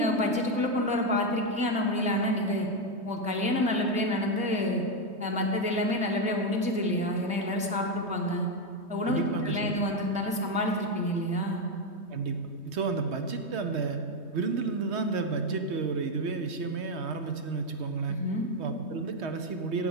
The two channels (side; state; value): left; late; 3.2 ms